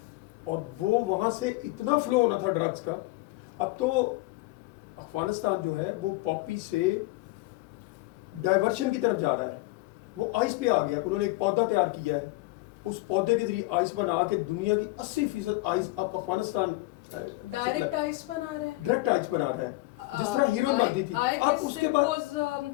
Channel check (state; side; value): quieter; right; 21.7 dB